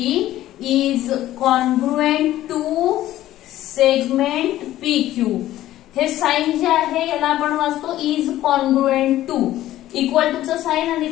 is congruent to segment PQ. हे साइन जे आहे याला आपण वाचतो is congruent to, equal to चं साइन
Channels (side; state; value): right; quieter; 14.1 dB